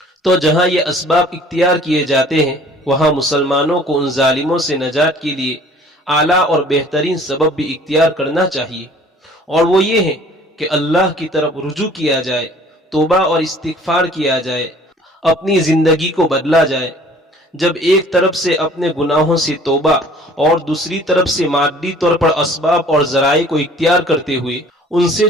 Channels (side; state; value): both; normal; correlation 0.52